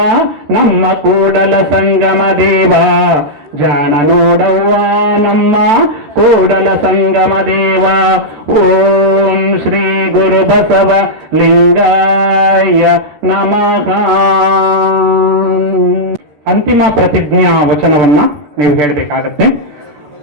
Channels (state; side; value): late; left; 14 ms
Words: ನಮ್ಮ ಕೂಡಲ ಸಂಗಮ ದೇವ, ಜಾಣ ನೋಡವ್ವ ನಮ್ಮ ಕೂಡಲ ಸಂಗಮ ದೇವ. ಓಂ ಶ್ರೀ ಗುರು ಬಸವ ಲಿಂಗಾಯ ನಮಃ. ಅಂತಿಮ ಪ್ರತಿಜ್ಞಾ ವಚನವನ್ನ ನೀವು ಹೇಳಬೇಕಾಗತ್ತೆ.